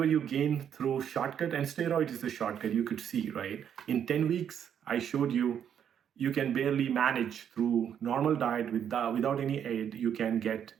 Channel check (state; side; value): quieter; left; 8.8 dB